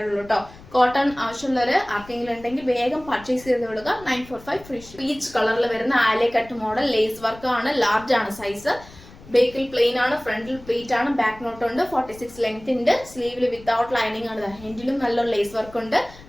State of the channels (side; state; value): left; noise; rumble, 20 dB below the sound